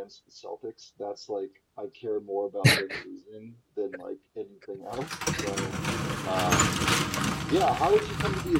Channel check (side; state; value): both; identical; correlation 1.00